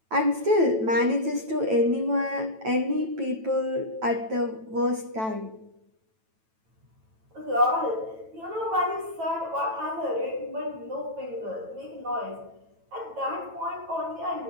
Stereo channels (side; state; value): left; late; 9.1 ms